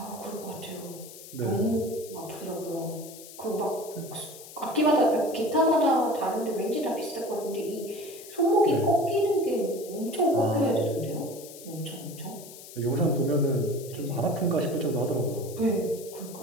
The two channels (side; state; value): left; noise; hiss, 16 dB below the sound